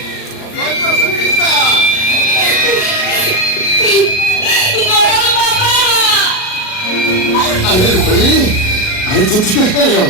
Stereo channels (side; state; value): right; late; 38 ms